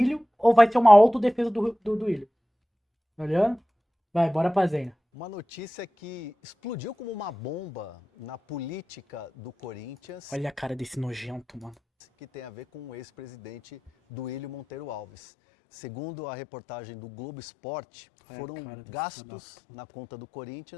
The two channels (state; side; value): drops out; right; at 15.1 s